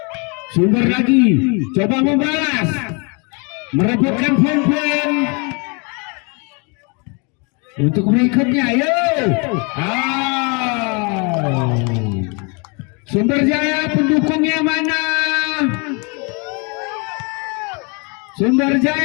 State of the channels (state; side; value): quieter; right; 32.5 dB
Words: Sumber lagi, coba membalas, merebutkan poin untuk berikutnya. Sumber Jaya pendukungnya mana? Sumber